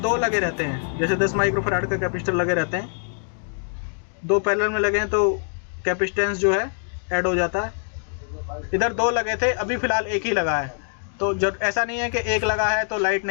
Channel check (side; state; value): right; silent; digital silence